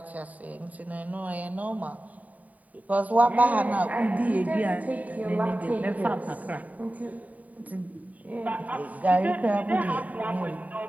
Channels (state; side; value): late; left; 0.072 ms